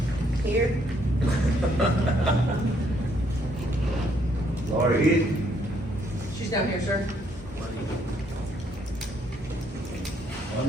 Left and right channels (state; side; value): normal; both; correlation 0.69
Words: Here. Laura Heath. She's down here, sir.